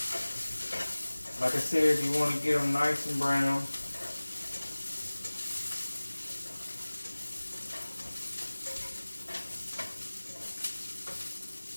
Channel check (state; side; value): inverted; both; correlation -1.00